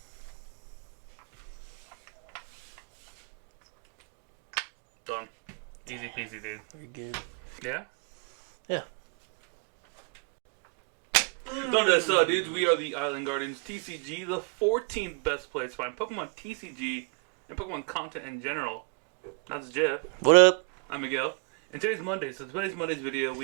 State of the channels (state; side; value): quieter; left; 38.8 dB